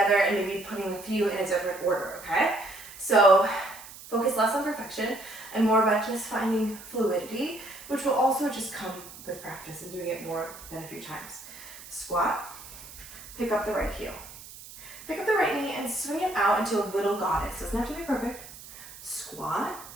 and maybe putting a few in a different order, okay? So focus less on perfection and more about just finding fluidity, which will also just come with practice and doing it more than a few times. Squat, pick up the right heel. Pick up the right knee and swing it out into a little goddess. Doesn't have to be perfect. Squat,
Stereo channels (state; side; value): noise; right; hiss, 16 dB below the sound